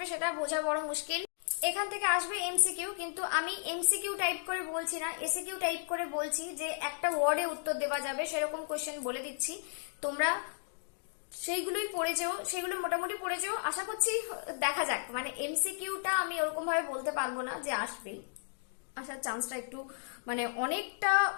সেটা বোঝা বড় মুশকিল। এখান থেকে আসবে এমসিকিউ, কিন্তু আমি এমসিকিউ টাইপ করে বলছি না, এসিকিউ টাইপ করে বলছি যে একটা ওয়ার্ডে উত্তর দেওয়া যাবে সেরকম কোশ্চেন বলে দিচ্ছি। তোমরা সেইগুলোই পড়ে যেও, সেগুলো মোটামুটি পড়ে যেও। আশা করছি দেখা যাক, মানে এমসিকিউটা আমি ওরকম ভাবে বলতে পারবো না যে আসবেই, আসার চান্সটা একটু মানে অনেকটা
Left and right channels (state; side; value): silent; right; digital silence